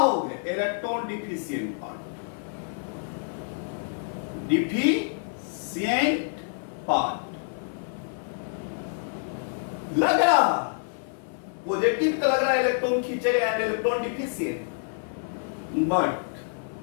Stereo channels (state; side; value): silent; right; 55 dB below the other